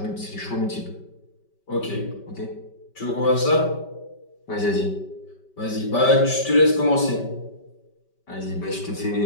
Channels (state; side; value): late; right; 5.2 ms